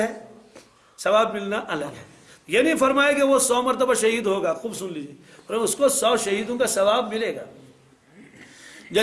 ثواب ملنا الگ ہے. یہ نہیں فرمایا کہ وہ 100 مرتبہ شہید ہوگا. خوب سن لیجیے، اس کو 100 شہیدوں کا ثواب ملے گا.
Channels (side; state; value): both; identical; correlation 1.00